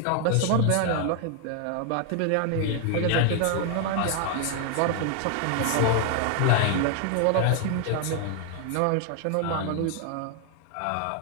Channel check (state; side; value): different; both; correlation 0.00